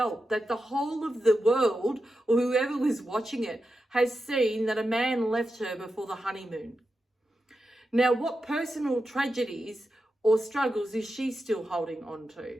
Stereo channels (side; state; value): both; normal; correlation 0.89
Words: that the whole of the world, or whoever was watching it, has seen that a man left her before the honeymoon. Now, what personal tragedies or struggles is she still holding on